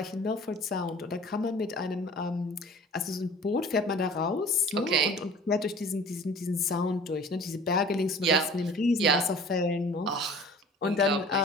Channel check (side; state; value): both; normal; correlation 0.45